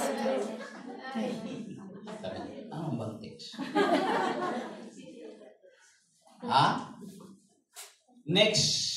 Ano bang text? Next.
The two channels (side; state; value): both; identical; correlation 1.00